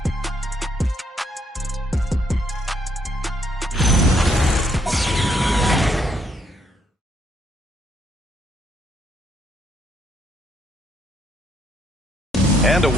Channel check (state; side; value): normal; both; correlation 0.72